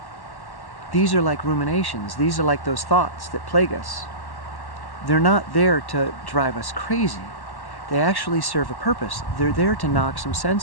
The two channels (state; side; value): late; right; 1.1 ms